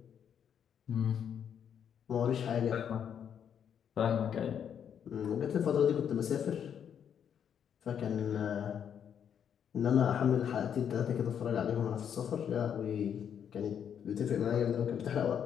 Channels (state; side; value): quieter; right; 8.4 dB